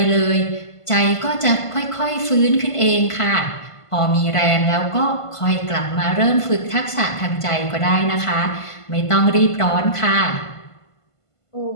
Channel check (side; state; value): right; late; 1.5 ms